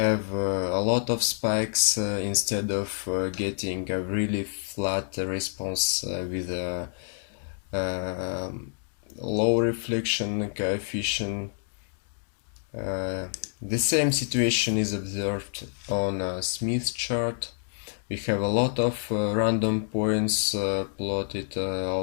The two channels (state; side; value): silent; right; digital silence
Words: a lot of spikes instead of getting a really flat response with a low reflection coefficient. The same situation is observed on a Smith chart. We have a lot of random points plotted